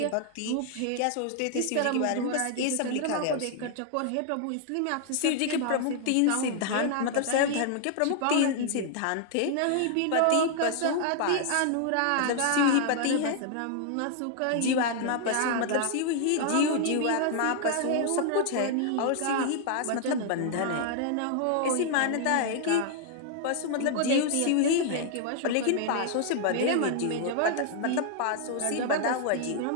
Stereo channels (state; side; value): different; both; correlation 0.00